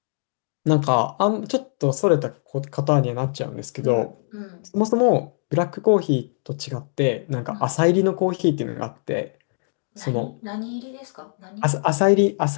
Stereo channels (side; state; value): right; silent; digital silence